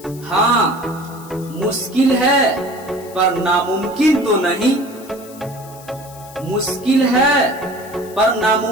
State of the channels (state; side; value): noise; left; hiss, 20 dB below the sound